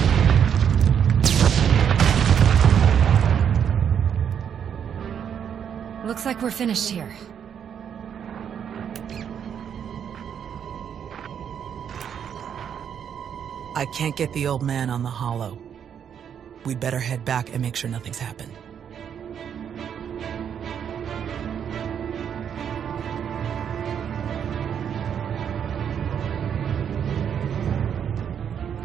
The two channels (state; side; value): quieter; left; 8.3 dB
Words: Looks like we're finished here. I can't get the old man on the holo. We'd better head back and make sure nothing's happened.